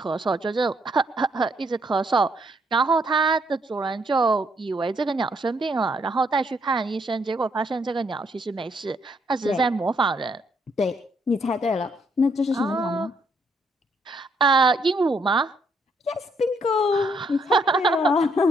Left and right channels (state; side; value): normal; both; correlation 0.72